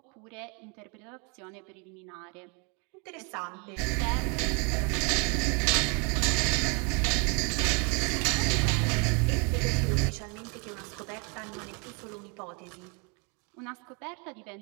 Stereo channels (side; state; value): left; quieter; 33.9 dB